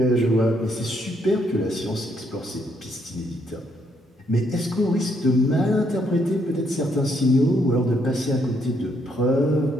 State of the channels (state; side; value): normal; both; correlation 0.73